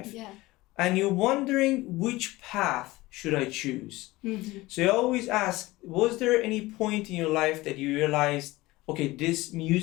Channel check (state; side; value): quieter; right; 19.7 dB